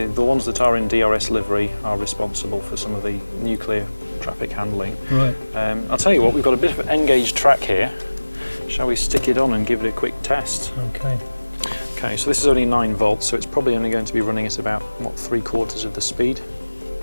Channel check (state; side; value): inverted; both; correlation -1.00